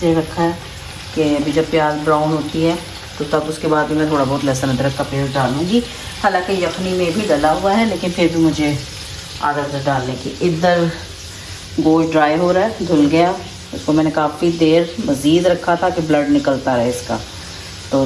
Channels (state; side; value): identical; both; correlation 1.00